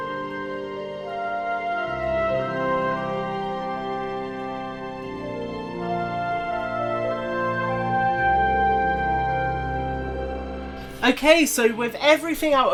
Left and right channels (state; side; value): identical; both; correlation 1.00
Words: Okay, so with everything out